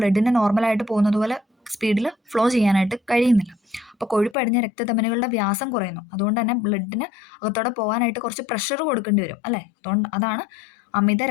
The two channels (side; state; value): right; drops out; at 4.4 s